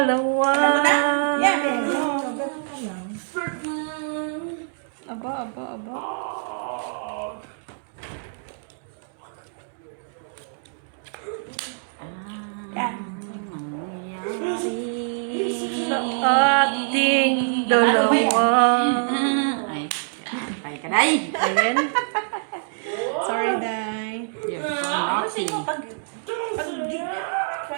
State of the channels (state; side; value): silent; left; digital silence